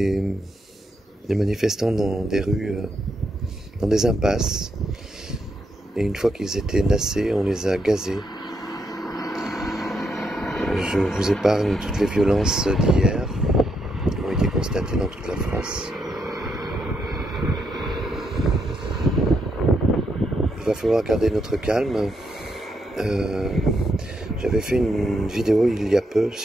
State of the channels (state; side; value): normal; both; correlation 0.79